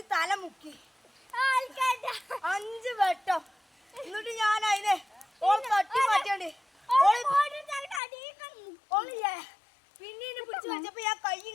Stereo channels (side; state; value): right; drops out; at 8.0 s